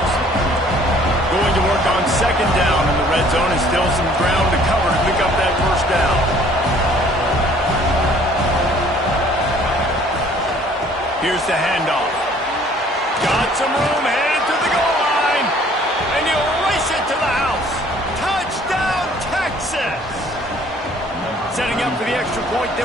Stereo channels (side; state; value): both; normal; correlation 0.56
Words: Going to work on second down in the red zone, and still some ground to cover to pick up that first down. Here's the handoff. Got some room, headed to the goal line. And he'll race it to the house. Touchdown, Texas! Setting up for the extra point